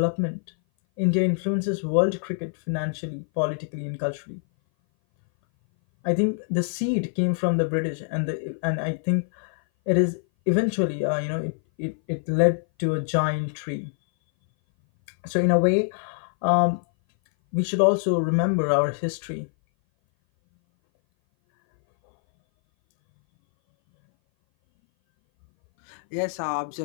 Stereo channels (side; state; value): right; silent; 58 dB below the other